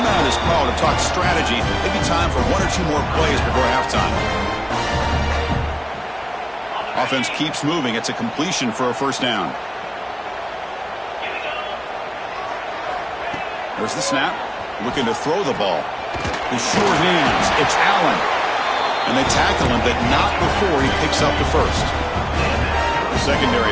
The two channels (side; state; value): both; identical; correlation 1.00